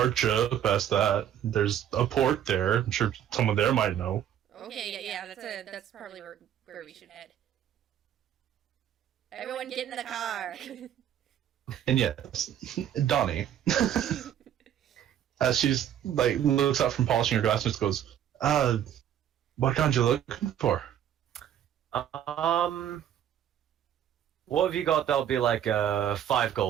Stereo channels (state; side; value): quieter; left; 10.3 dB